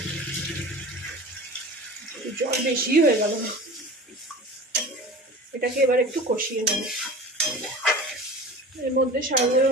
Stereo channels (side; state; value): both; normal; correlation 0.36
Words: জল বেশি হয়ে গেল, এটাকে এবার একটু কষিয়ে নেব। এর মধ্যে